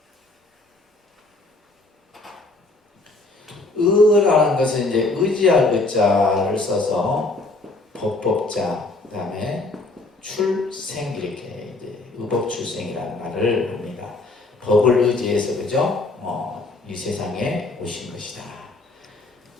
의라는 것은 이제 의지할 의자를 써서 법법자, 그 다음에 출생 이렇게 이제 의법 출생이라는 말을 합니다. 법을 의지해서 그죠? 이 세상에 오신 것이다.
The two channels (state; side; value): quieter; right; 3.1 dB